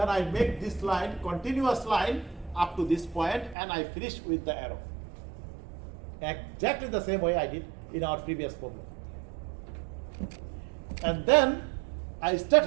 I make this line, continuous line, up to this point, and I finish with the arrow. Exactly the same way I did in our previous problem. And then I start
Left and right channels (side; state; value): left; drops out; at 3.6 s